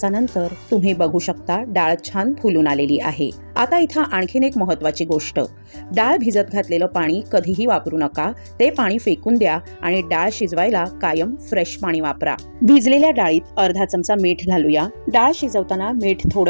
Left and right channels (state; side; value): inverted; both; correlation -1.00